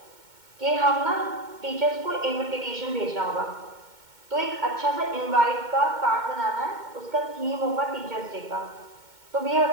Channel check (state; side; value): late; left; 2.2 ms